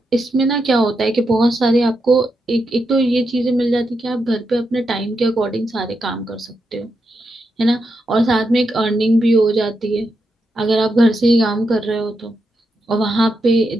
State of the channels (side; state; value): both; normal; correlation 0.84